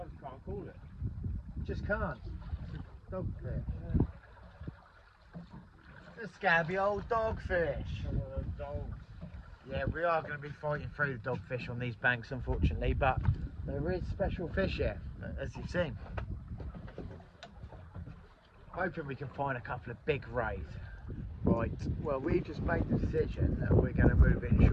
just can't call it. Just can't. It's a dogfish. Yeah. A scabby old dogfish. Dogs. Yeah, we are going to be fighting through the dogfish on these banks, unfortunately, but there is special fish here, as you've seen. Hoping we can find a couple of big rays. Right, well, we just made the decision that we're going to move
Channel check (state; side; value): identical; both; correlation 1.00